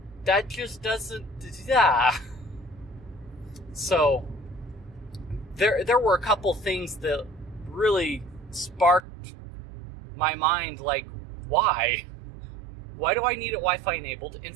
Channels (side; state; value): left; drops out; at 9.0 s